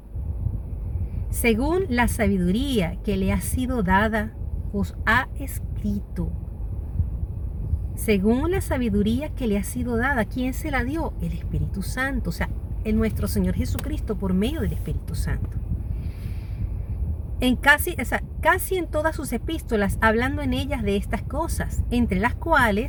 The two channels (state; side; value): identical; both; correlation 1.00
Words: según la sabiduría que le ha sido dada, os ha escrito. Según la sabiduría que le ha sido dada, ¿quién se la dio? El Espíritu Santo, o sea, nuestro Señor Jesucristo por medio del Espíritu Santo. Casi en todas sus epístolas, hablando en ellas de estas cosas, entre las